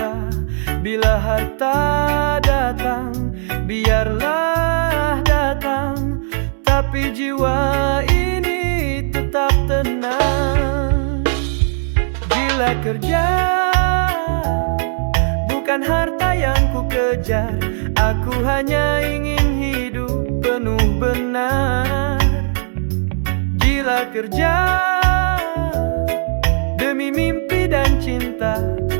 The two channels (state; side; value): silent; left; digital silence